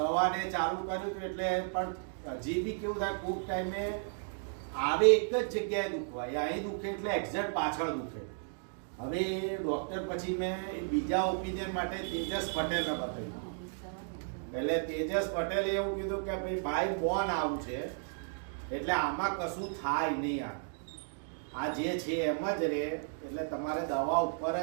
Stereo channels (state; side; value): silent; left; digital silence